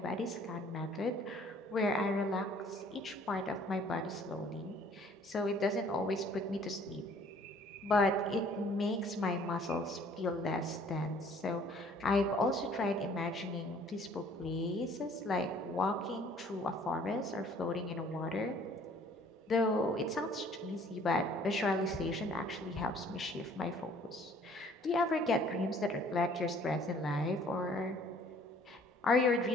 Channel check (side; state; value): both; normal; correlation 0.56